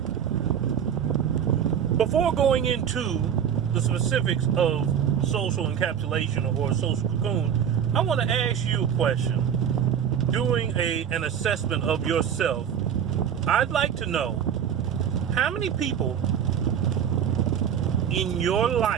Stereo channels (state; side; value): quieter; left; 8.5 dB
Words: before going into the specifics of social encapsulation or social cocoon, I want to ask you a question. Doing an assessment of yourself, I'd like to know how many people in your